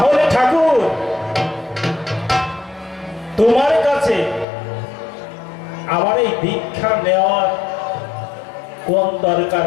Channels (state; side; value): drops out; right; at 4.5 s